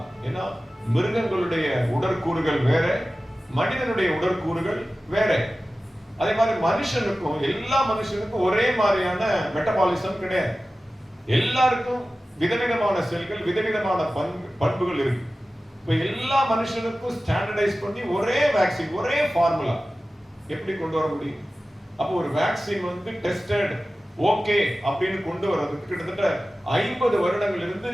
ஏன்னா மிருகங்களுடைய உடற்கூறுகள் வேற, மனிதனுடைய உடற்கூறுகள் வேற. அதே மாதிரி மனுஷனுக்கும், எல்லா மனுஷனுக்கும் ஒரே மாதிரியான மெட்டபாலிசம் கிடையாது. எல்லாருக்கும் விதவிதமான செல்கள், விதவிதமான பண்புகள் இருக்கு. இப்ப எல்லா மனுஷனுக்கும் ஸ்டாண்டர்டைஸ் பண்ணி ஒரே வேக்சின், ஒரே ஃபார்முலா எப்படி கொண்டு வர முடியும்? அப்போ ஒரு வேக்சின் வந்து டெஸ்டட் ஓகே அப்படின்னு கொண்டு வர்றதுக்கு கிட்டத்தட்ட 50 வருடங்கள் இருந்து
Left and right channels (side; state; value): both; normal; correlation 0.95